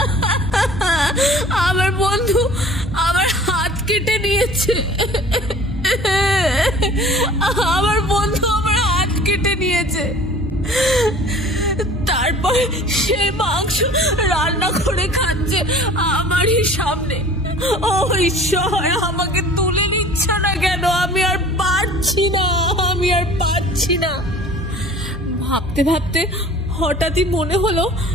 আমার বন্ধু আমার হাত কেটে নিয়েছে। আমার বন্ধু আমার হাত কেটে নিয়েছে। তারপর সেই মাংস রান্না করে খাচ্ছে আমারই সামনে। ও ঈশ্বর, আমাকে তুলে নিচ্ছে না কেন? আমি আর পারছি না, আমি আর পারছি না। ভাবতে ভাবতে হঠাৎই মনে হলো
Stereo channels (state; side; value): normal; both; correlation 0.46